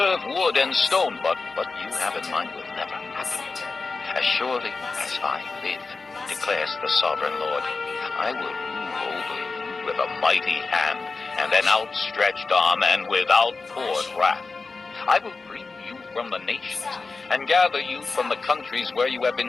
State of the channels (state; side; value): quieter; right; 4.1 dB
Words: wood and stone, but what you have in mind will never happen. As surely as I live, declares the sovereign Lord, I will rule over you with a mighty hand and an outstretched arm and with outpoured wrath. I will bring you from the nations and gather you from the countries where you have